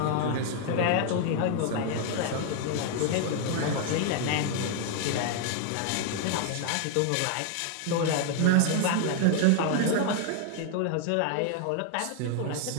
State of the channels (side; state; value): both; different; correlation 0.00